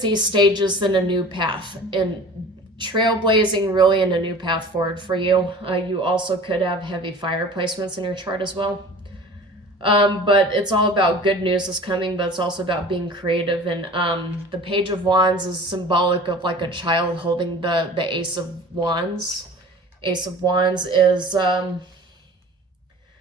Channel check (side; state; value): both; normal; correlation 0.42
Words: stages in a new path, and trailblazing really in a new path forward for you. You also could have heavy fire placements in your chart as well. But it's all about good news is coming, but it's also about being creative. And the Page of Wands is symbolic of like a child holding the Ace of Wands. Ace of Wands is